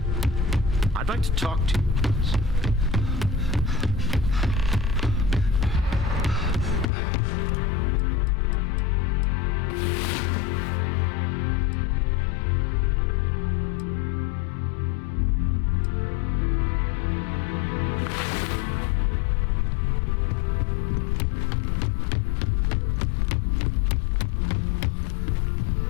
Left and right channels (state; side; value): drops out; right; at 6.9 s